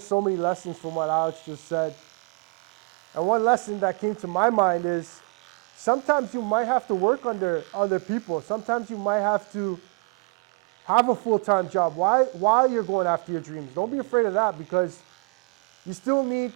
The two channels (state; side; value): quieter; left; 34.1 dB